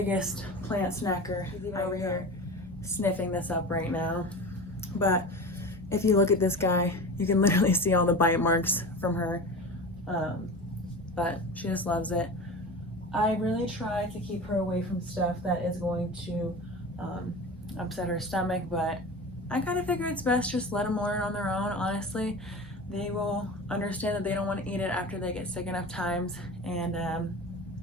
plant snacker. She's even over here sniffing this up right now. But if you look at this guy, you can literally see all the bite marks from her. But she just loves it. I really try to keep her away from stuff that is going to upset her stomach, but I kind of figure it's best just let them learn on their own. Honestly, they will understand that they don't want to eat it after they get sick enough times, and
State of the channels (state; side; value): normal; both; correlation 0.31